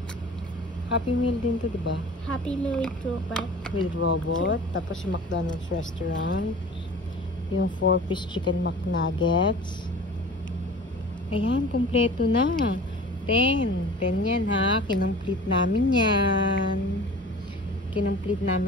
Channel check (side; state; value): both; normal; correlation 0.41